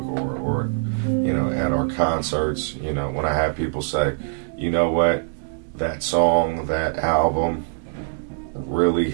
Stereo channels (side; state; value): left; silent; digital silence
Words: or you know, at our concerts, you know, when I have people say, you know what, that song, that album really